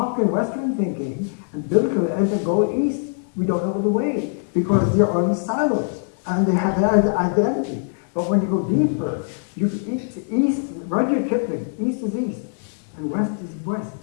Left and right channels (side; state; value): right; silent; digital silence